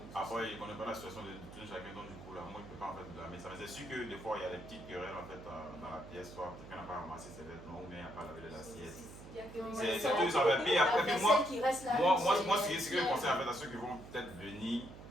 Après, ils ne connaissent pas la situation de tout chacun, donc du coup, là, moi je ne peux pas en fait blâmer ça. Mais c'est sûr que des fois, il y a des petites querelles en fait dans la pièce, soit quelqu'un n'a pas ramassé ses vêtements ou bien il n'a pas lavé l'assiette. C'est tout ça. Puis après, puis moi, ce que je conseille en fait à ceux qui vont peut-être venir,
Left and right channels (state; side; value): noise; right; hum, 15 dB below the sound